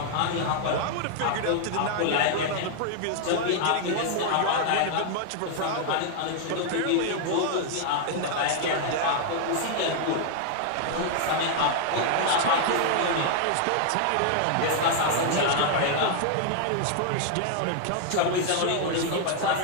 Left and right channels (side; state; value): both; different; correlation 0.00